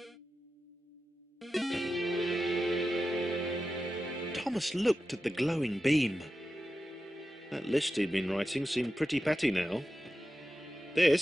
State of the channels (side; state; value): both; normal; correlation 0.92